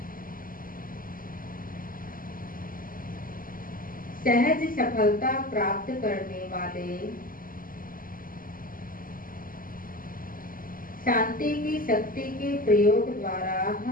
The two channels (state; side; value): late; right; 0.41 ms